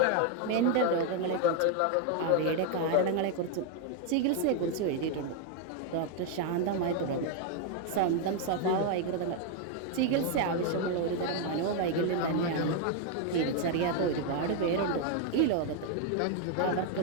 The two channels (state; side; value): different; both; correlation 0.00